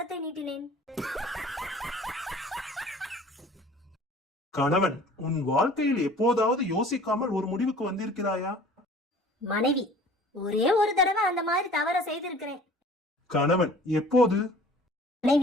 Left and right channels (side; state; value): both; normal; correlation 0.48